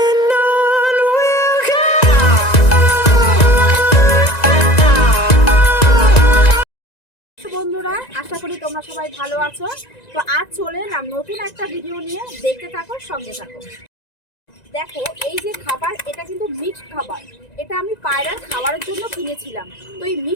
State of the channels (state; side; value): late; right; 1.9 ms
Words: বন্ধুরা, আশা করি তোমরা সবাই ভালো আছো। তো আজ চলে এলাম নতুন একটা ভিডিও নিয়ে, দেখতে থাকো, সঙ্গে থাকো। দেখো, এই যে খাবার, এটা কিন্তু মিক্সড খাবার। এটা আমি পায়রার খাবারের জন্য কিনেছিলাম। তো এই